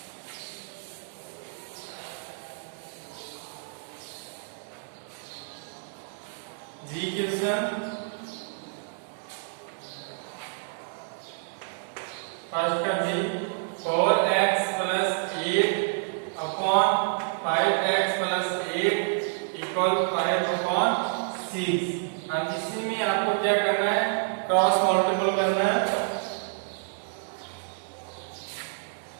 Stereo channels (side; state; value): left; silent; 59 dB below the other